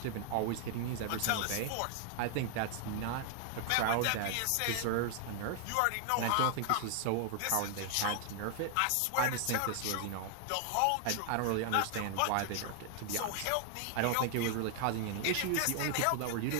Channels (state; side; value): different; both; correlation 0.00